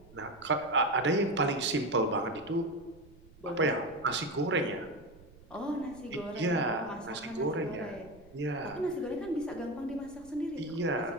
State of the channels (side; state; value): right; noise; rumble, 23 dB below the sound